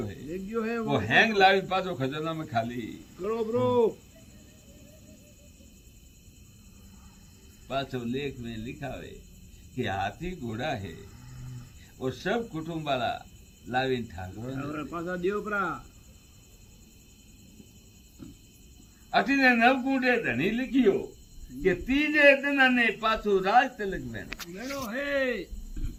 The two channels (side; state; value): both; identical; correlation 1.00